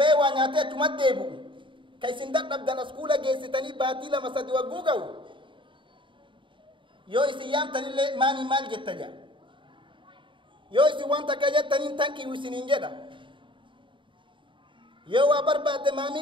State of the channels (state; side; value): late; left; 0.24 ms